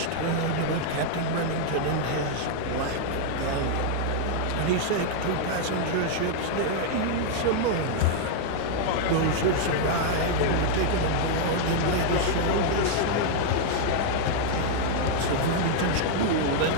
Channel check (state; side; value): different; both; correlation 0.00